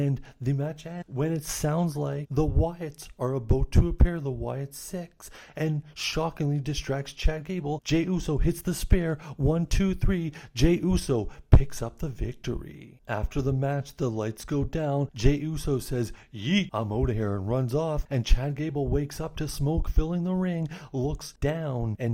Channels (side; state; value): both; identical; correlation 1.00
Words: the match ends when it sounds like the Wyatts are about to appear, the Wyatt Six, and shockingly distracts Chad Gable. Jey Uso hits the spear, 1, 2, 3, Jey Uso picks up the victory. After the match, the lights go down. Jey Uso says, yeet, I'm out of here, and runs off. And Chad Gable wakes up to smoke filling the ring, looks down,